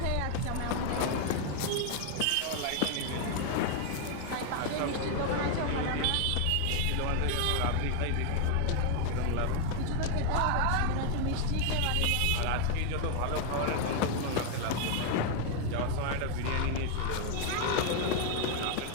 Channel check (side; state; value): both; different; correlation 0.01